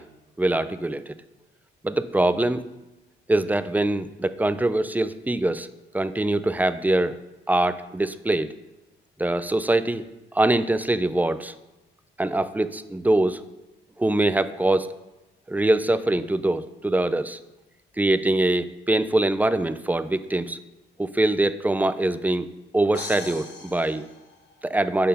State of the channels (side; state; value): both; normal; correlation 0.89